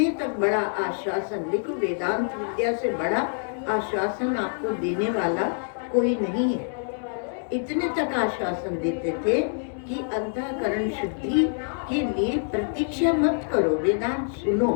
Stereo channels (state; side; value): silent; right; digital silence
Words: तक बड़ा आश्वासन, देखो वेदांत विद्या से बड़ा आश्वासन आपको देने वाला कोई नहीं है। इतने तक आश्वासन देते थे कि अंतःकरण शुद्धि के लिए प्रतीक्षा मत करो, वेदांत सुनो।